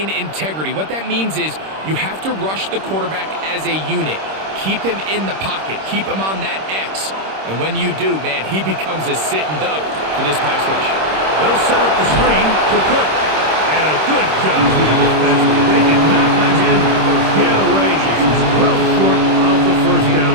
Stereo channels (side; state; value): left; late; 26 ms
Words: integrity. What that means is you have to rush the quarterback as a unit. Keep him in the pocket. Keep him on that X. And when you do, man, he becomes a sitting duck for this pass rush. They'll set up the screen to Cook. And a good job with the defense. They did not let him get away. He's well short of the 1st down